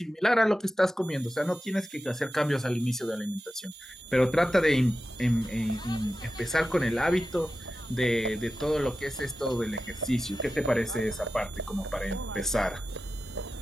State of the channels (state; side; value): normal; both; correlation 0.93